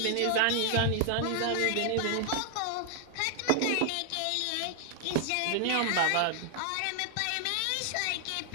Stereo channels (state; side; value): different; both; correlation 0.00